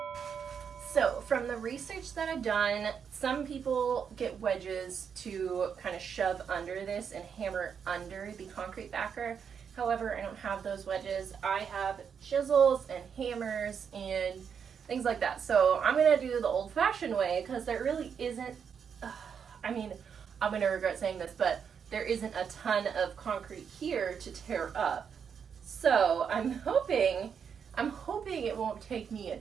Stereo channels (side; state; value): left; quieter; 7.1 dB